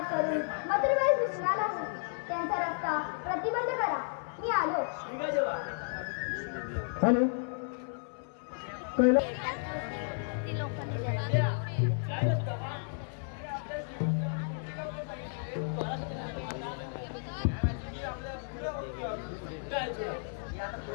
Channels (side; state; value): right; silent; 56 dB below the other